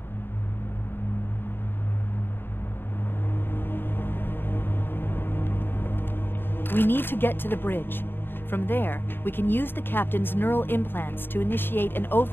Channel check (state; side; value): late; right; 0.10 ms